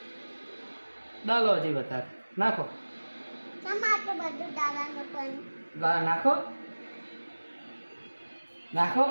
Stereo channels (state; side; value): inverted; both; correlation -1.00